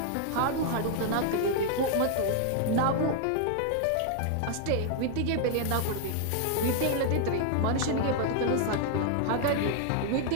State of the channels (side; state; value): both; different; correlation 0.00